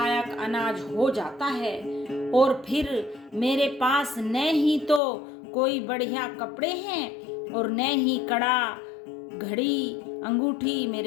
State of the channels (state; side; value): drops out; right; at 5.0 s